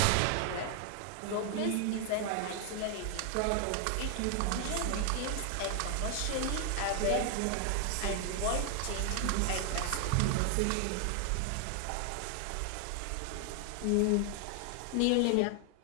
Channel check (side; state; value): both; different; correlation 0.00